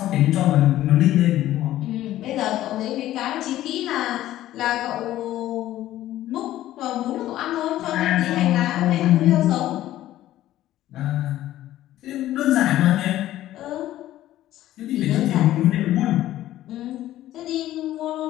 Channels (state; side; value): quieter; right; 13.9 dB